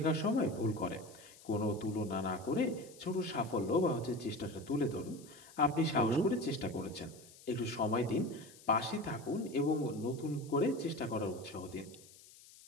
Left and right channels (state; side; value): noise; left; hiss, 21 dB below the sound